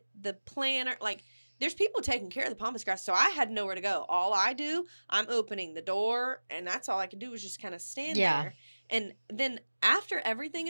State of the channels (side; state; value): both; inverted; correlation -1.00